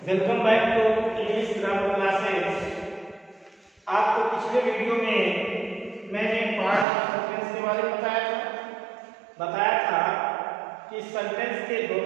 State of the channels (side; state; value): left; drops out; at 6.9 s